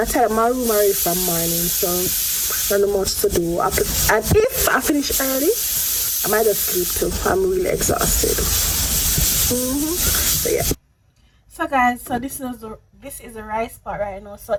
tied up my room already from morning, so not much to do. And if I finish early, I might just sleep too. I'm really exhausted. So yeah. So guys, so this is the rice part right now. So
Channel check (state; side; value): identical; both; correlation 1.00